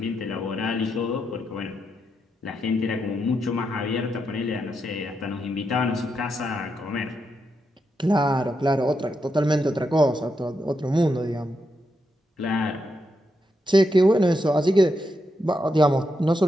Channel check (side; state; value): both; normal; correlation 0.83